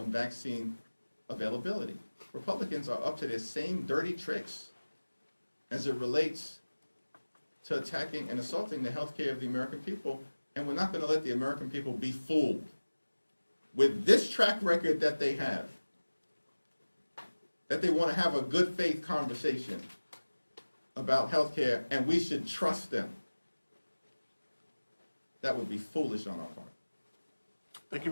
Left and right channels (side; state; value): both; inverted; correlation -1.00